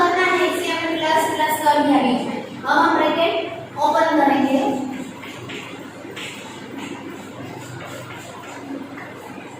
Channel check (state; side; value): identical; both; correlation 1.00